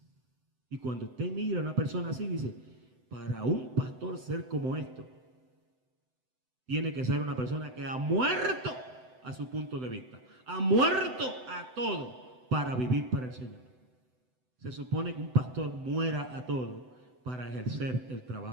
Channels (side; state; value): left; late; 7.9 ms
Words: Y cuando usted mira a una persona así, dice: para un pastor ser como esto, tiene que ser una persona que ha muerto a su punto de vista, ha muerto a todo para vivir para el Señor. Se supone que un pastor muera a todo para ejercer el